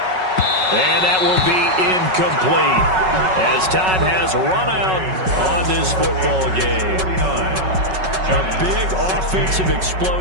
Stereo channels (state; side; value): late; left; 5.3 ms